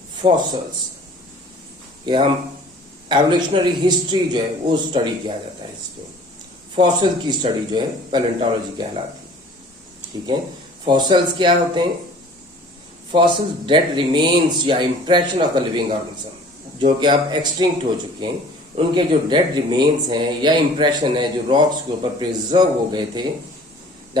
fossils. ये हम एवोल्यूशनरी हिस्ट्री जो है वो स्टडी किया जाता है इसमें। फॉसिल की स्टडी जो है पैलेंटोलॉजी कहलाती है। ठीक है, फॉसिल्स क्या होते हैं? फॉसिल्स डेड रिमेन्स या impression of the living organism, जो कि अब एक्सटिंक्ट हो चुके हैं, उनके जो डेड रिमेन्स हैं या इंप्रेशन है जो रॉक्स के ऊपर प्रिजर्व हो गए थे,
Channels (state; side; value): normal; both; correlation 0.49